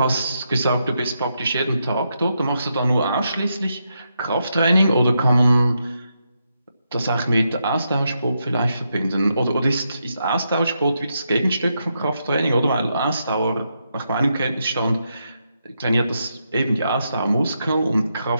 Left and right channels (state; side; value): inverted; both; correlation -0.82